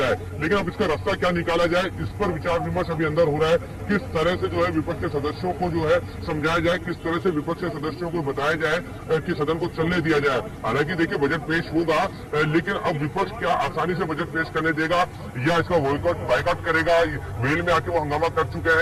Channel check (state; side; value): identical; both; correlation 1.00